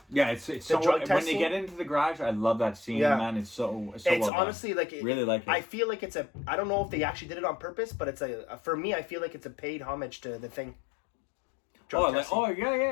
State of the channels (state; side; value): drops out; right; at 4.3 s